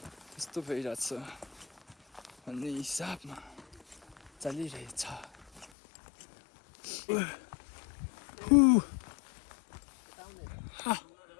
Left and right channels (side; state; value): right; drops out; at 5.7 s